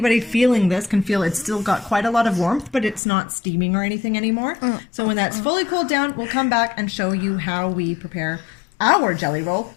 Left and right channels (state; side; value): drops out; right; at 3.0 s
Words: feeling this can feel it's still got quite a lot of warmth, but it's not steaming or anything anymore. So when that's fully cooled down, we'll come back and show you how we prepare our jelly roll. All